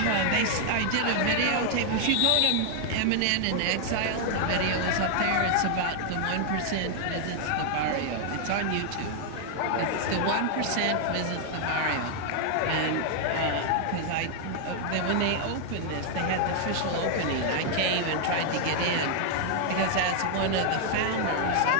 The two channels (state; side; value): different; both; correlation 0.00